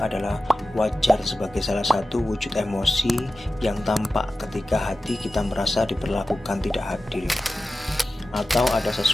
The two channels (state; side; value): normal; both; correlation 0.94